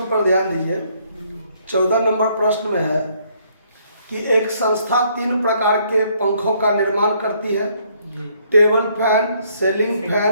पर ध्यान दीजिए। 14 नंबर प्रश्न में है कि एक संस्था 3 प्रकार के पंखों का निर्माण करती है, table fan, ceiling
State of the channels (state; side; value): inverted; both; correlation -0.67